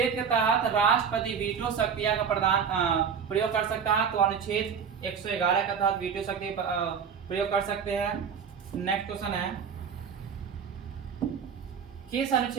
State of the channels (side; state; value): left; quieter; 6.8 dB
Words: के तहत राष्ट्रपति वीटो शक्तियां का प्रयोग कर सकता है? तो अनुच्छेद 111 के तहत वीटो शक्ति प्रयोग कर सकते हैं। नेक्स्ट क्वेश्चन है, किस